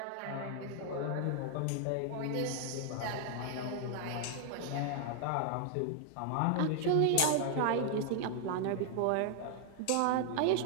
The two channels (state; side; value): different; both; correlation 0.00